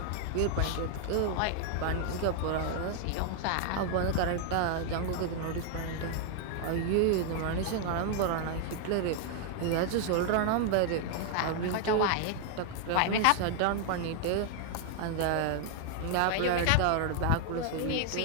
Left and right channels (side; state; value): both; different; correlation 0.00